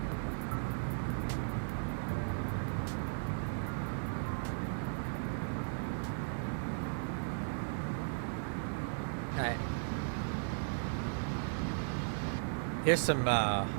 Alright. Here's some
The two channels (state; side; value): silent; left; digital silence